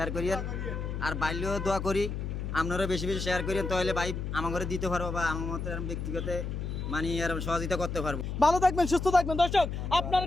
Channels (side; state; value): left; noise; hum, 4 dB below the sound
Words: করিয়েন, আর বাইরেও দোয়া করি আপনারা বেশি বেশি শেয়ার করিয়েন, তাহলে ভাই আমার ঘরে দিতে পারবো বা আমার মতো ব্যক্তিগত মানে আর সহযোগিতা করতে পারবো। ভালো থাকবেন, সুস্থ থাকবেন। দর্শক আপনার